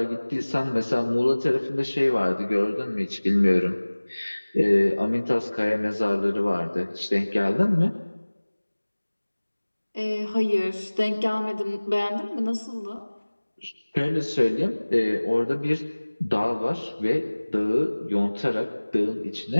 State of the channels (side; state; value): both; inverted; correlation -1.00